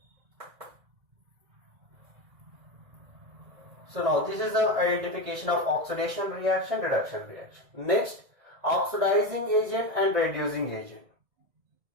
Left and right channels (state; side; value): late; left; 2.0 ms